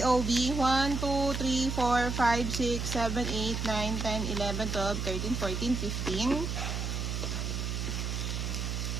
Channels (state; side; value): noise; right; hum, 2 dB below the sound